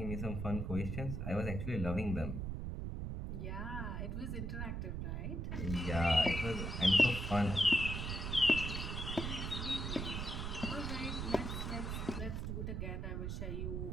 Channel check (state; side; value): noise; right; rumble, 3 dB below the sound